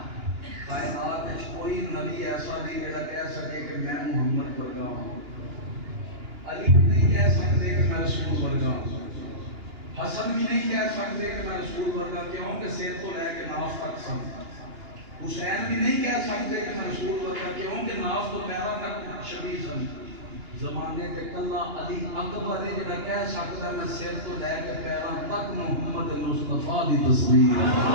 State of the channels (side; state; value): left; late; 2.9 ms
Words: کائنات وچ کوئی نبی ایسا نہیں جڑا کہہ سکے کہ میں محمد ورگا ہوں علی بھی نہیں کہہ سکتے کہ میں رسول ورگا ہوں حسن بھی نہیں کہہ سکتے کہ میں رسول ورگا کیوں کہ سر تو لے کے ناف تک سن حسین بھی نہیں کہہ سکتے کہ میں رسول ورگا کیوں کہ ناف تو پیرا تک شبیہ سن زمانے تے کلا علی اکبر ہے جڑا کہہ سکتا میں سر تو لے کے پیرا تک محمد مصطفیٰ دی